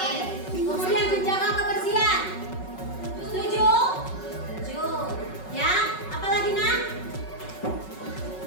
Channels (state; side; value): late; right; 5.4 ms